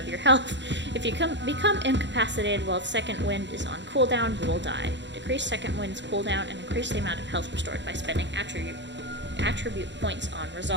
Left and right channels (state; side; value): late; left; 0.52 ms